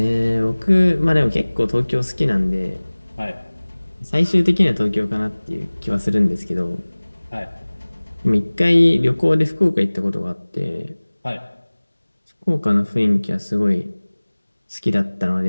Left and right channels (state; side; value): inverted; both; correlation -1.00